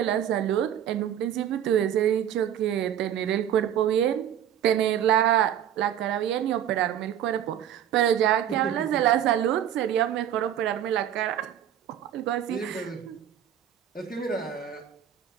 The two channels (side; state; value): left; quieter; 10.2 dB